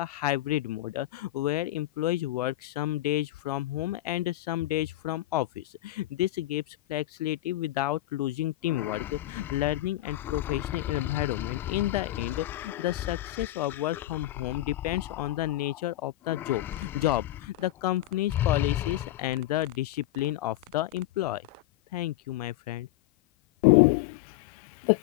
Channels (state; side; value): quieter; right; 15.5 dB